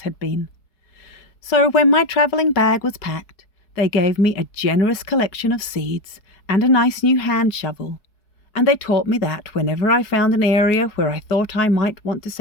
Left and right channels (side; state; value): right; late; 4.7 ms